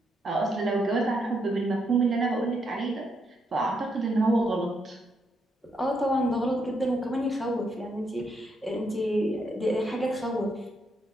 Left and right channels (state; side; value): normal; both; correlation 0.77